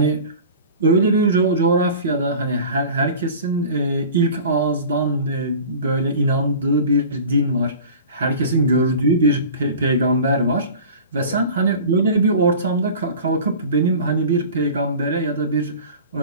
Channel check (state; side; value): inverted; both; correlation -0.39